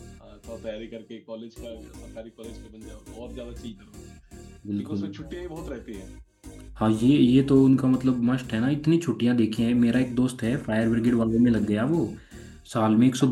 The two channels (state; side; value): identical; both; correlation 1.00